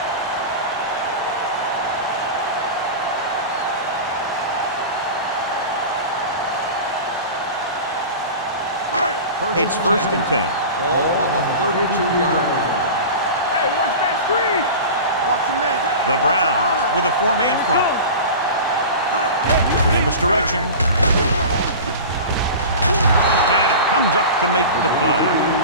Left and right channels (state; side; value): inverted; both; correlation -0.32